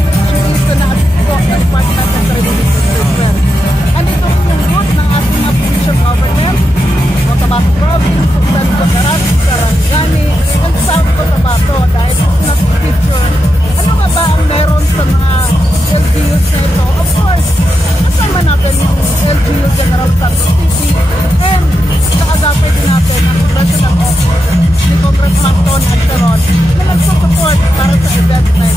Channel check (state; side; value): normal; both; correlation 0.86